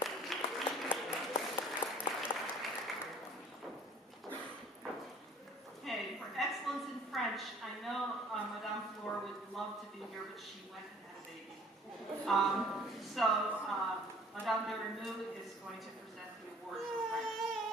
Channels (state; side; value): normal; both; correlation 0.53